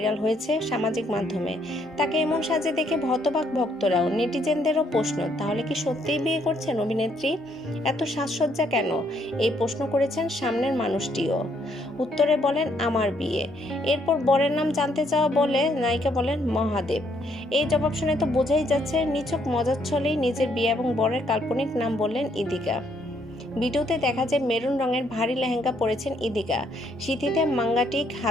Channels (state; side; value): normal; both; correlation 0.70